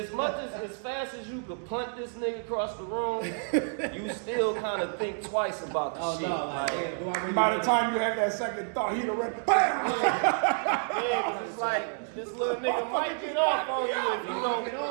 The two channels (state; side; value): silent; left; digital silence